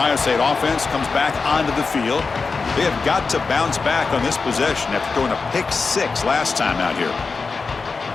State offense comes back onto the field. They have got to bounce back on this possession after throwing a pick 6 last time out here.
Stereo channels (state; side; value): quieter; right; 4.5 dB